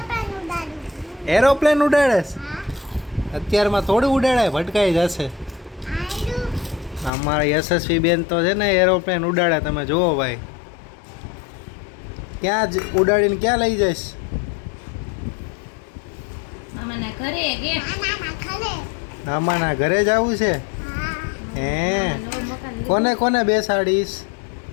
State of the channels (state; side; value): drops out; right; at 7.1 s